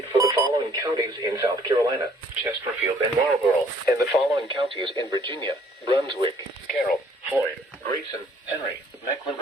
for the following counties in South Carolina: Chesterfield and Marlborough, and the following counties in Virginia: Brunswick, Carroll, Floyd, Grayson, Henry,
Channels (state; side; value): normal; both; correlation 0.60